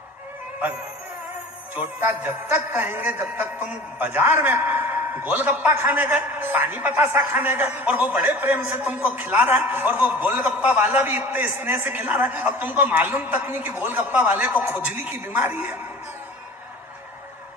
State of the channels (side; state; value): both; normal; correlation 0.41